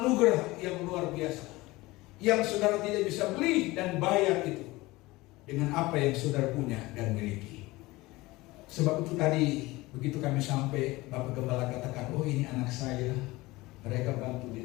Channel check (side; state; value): right; quieter; 20.5 dB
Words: yang luar biasa, yang saudara tidak bisa beli dan bayar itu dengan apa yang saudara punya dan miliki. Sebab itu tadi begitu kami sampai, Bapak Gembala katakan, oh ini anak saya, mereka bantu di